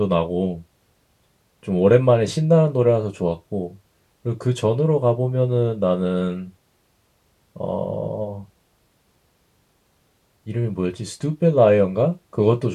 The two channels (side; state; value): both; identical; correlation 1.00